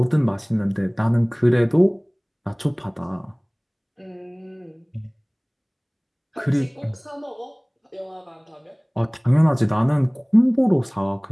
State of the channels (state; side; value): identical; both; correlation 1.00